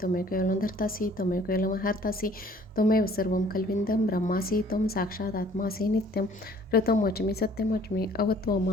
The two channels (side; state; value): both; normal; correlation 0.55